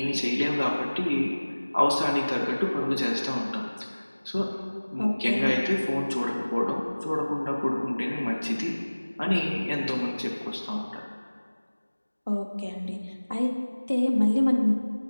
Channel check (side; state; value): both; inverted; correlation -1.00